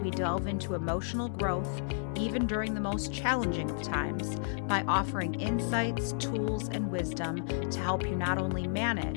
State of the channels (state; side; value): silent; right; digital silence